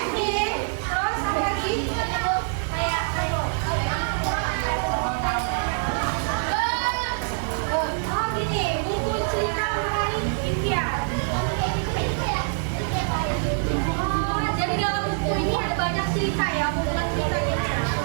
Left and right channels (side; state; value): left; silent; digital silence